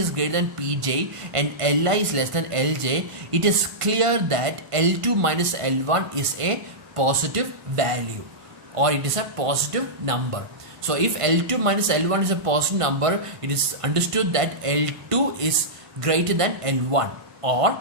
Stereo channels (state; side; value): late; left; 1.5 ms